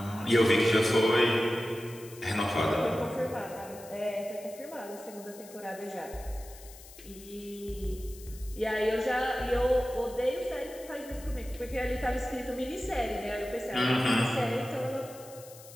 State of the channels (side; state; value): left; noise; hiss, 19 dB below the sound